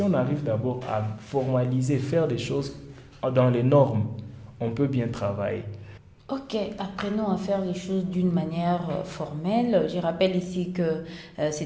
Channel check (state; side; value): identical; both; correlation 1.00